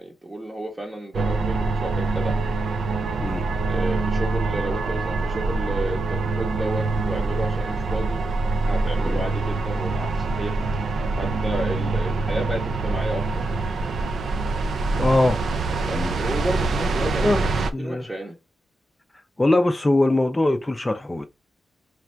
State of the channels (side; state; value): both; normal; correlation 0.87